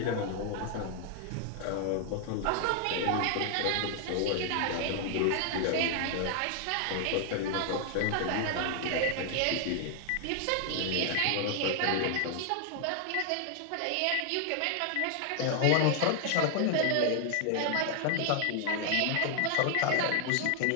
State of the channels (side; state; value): both; different; correlation 0.00